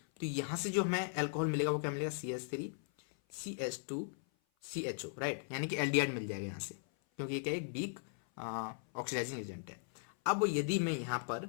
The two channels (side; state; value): right; silent; 53 dB below the other